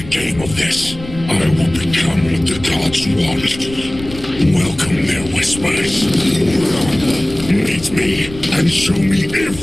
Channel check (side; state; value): left; noise; rumble, 14 dB below the sound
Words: game of this. I will become what the gods want. Welcome their whispers. Meet me and show me